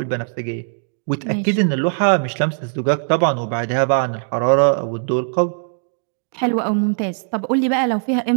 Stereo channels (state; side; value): silent; left; 66 dB below the other